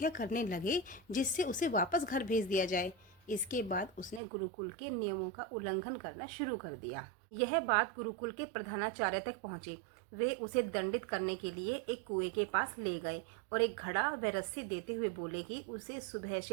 करने लगे, जिससे उसे वापस घर भेज दिया जाए। इसके बाद उसने गुरुकुल के नियमों का उल्लंघन करना शुरू कर दिया। यह बात गुरुकुल के प्रधानाचार्य तक पहुंची। वे उसे दंडित करने के लिए एक कुएं के पास ले गए और एक घड़ा व रस्सी देते हुए बोले कि उसे सुबह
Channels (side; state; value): left; drops out; at 4.2 s